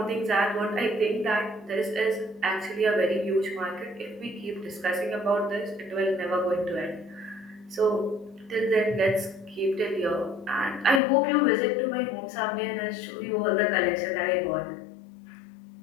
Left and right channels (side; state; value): right; drops out; at 11.0 s